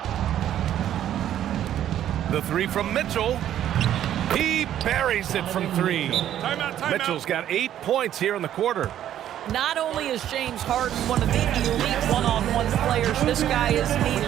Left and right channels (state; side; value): quieter; left; 11.2 dB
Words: The 3 from Mitchell. He buries it from 3. Timeout. Mitchell's got 8 points here in the quarter. Not only is James Harden one of the elite one-on-one players, this guy is an